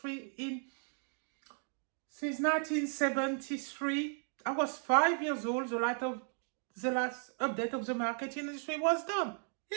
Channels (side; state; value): left; silent; 54 dB below the other